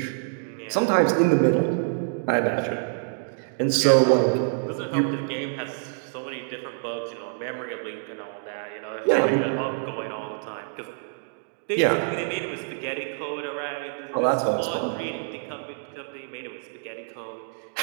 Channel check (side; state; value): left; silent; digital silence